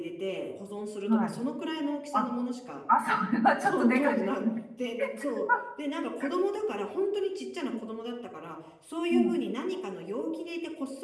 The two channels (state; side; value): identical; both; correlation 1.00